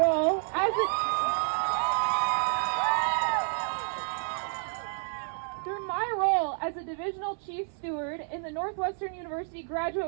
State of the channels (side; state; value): left; silent; 55 dB below the other